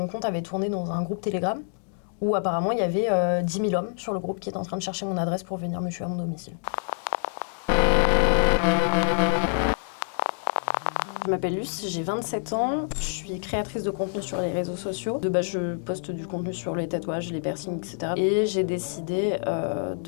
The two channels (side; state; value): right; silent; 60 dB below the other